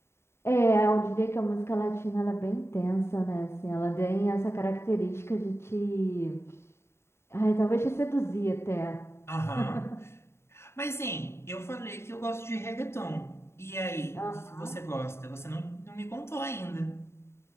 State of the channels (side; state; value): right; late; 0.12 ms